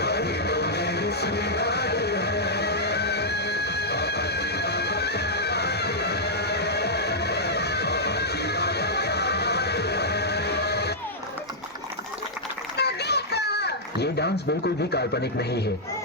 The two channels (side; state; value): both; normal; correlation -0.08